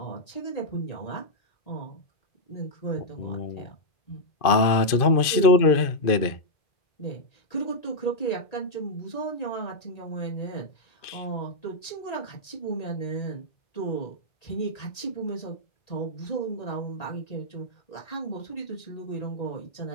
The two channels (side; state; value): right; late; 2.5 ms